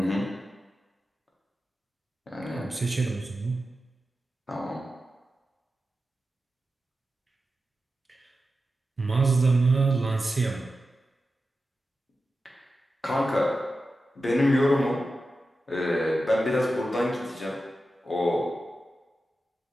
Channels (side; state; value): both; normal; correlation 0.92